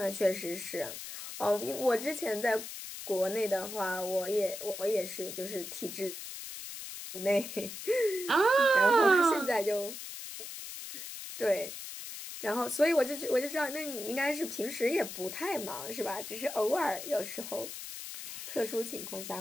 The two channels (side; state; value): left; noise; hiss, 9 dB below the sound